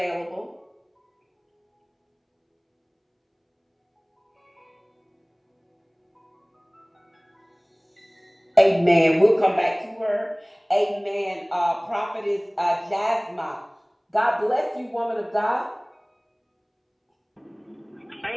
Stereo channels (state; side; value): identical; both; correlation 1.00